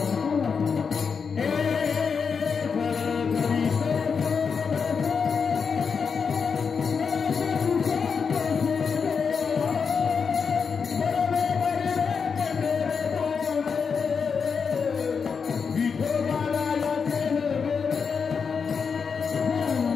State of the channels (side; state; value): right; quieter; 5.8 dB